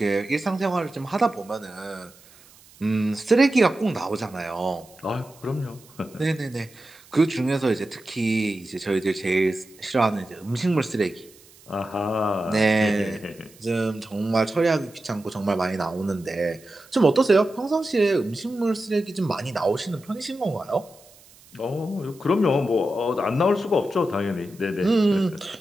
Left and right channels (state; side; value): noise; right; hiss, 25 dB below the sound